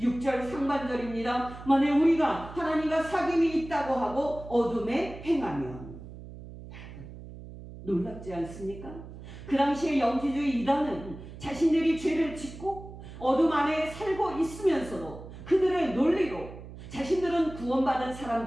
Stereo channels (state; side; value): noise; right; hum, 14 dB below the sound